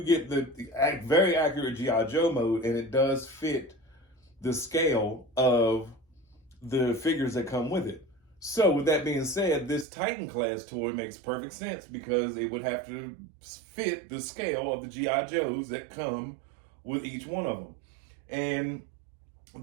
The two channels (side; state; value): left; drops out; at 9.9 s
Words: get the very accurate G.I. Joe mode, and it does fit the scale of the figures that come with it. So with that being said, this Titan class toy makes perfect sense because it would have to fit the scale of the G.I. Joes that come with each one of them. And I